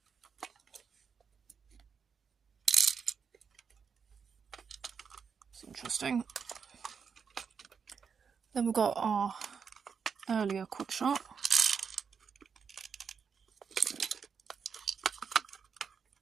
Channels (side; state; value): left; quieter; 6.3 dB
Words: That's interesting. Then we've got our earlier Quickshot.